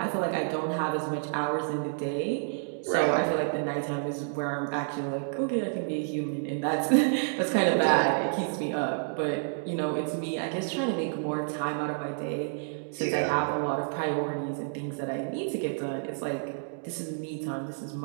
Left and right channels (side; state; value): left; silent; digital silence